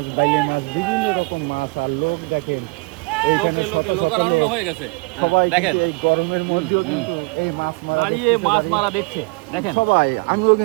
বাইলে মাছ, বিভিন্ন রকম মাছ। আর লোক দেখেন এইখানে সবাই এই গরমের মধ্যেও কিন্তু এই মাছ মারা দেখছে। দেখেন সবাই, আমিও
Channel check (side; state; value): left; quieter; 29.4 dB